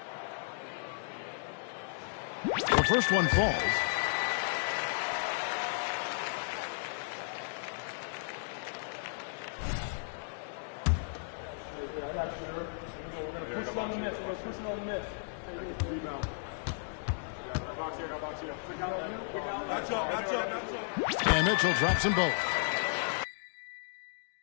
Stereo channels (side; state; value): right; silent; digital silence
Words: The first one falls. And Mitchell drops them both.